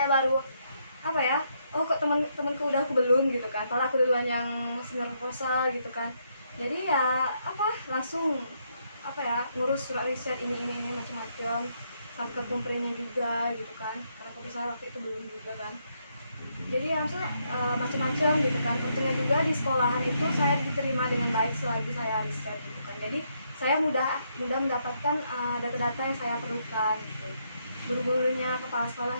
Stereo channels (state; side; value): inverted; both; correlation -0.76